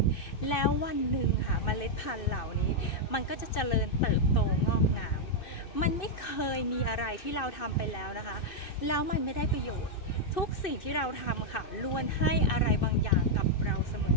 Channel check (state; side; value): late; right; 2.6 ms